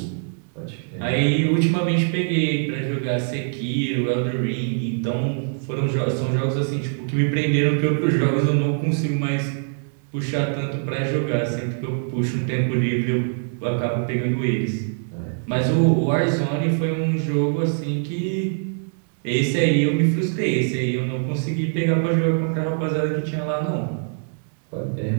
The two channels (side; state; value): left; silent; digital silence